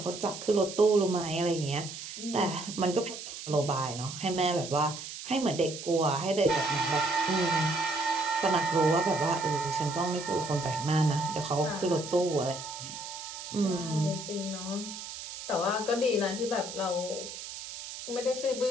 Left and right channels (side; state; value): right; noise; hiss, 10 dB below the sound